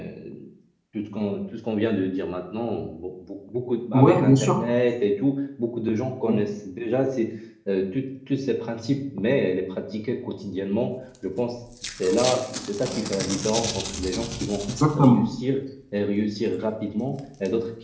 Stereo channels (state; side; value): identical; both; correlation 1.00